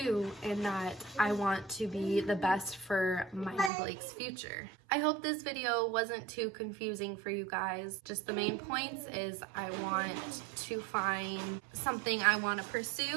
and that I want to be the best for my and Blake's future. I hope this video wasn't too confusing for you guys. Just the main points is I want to find something I want to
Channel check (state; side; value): drops out; left; at 3.7 s